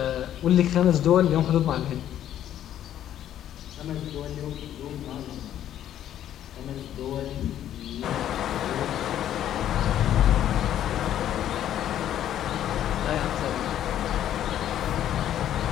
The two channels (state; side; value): quieter; right; 11.2 dB